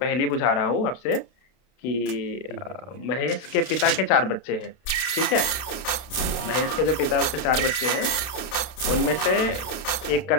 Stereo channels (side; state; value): right; late; 32 ms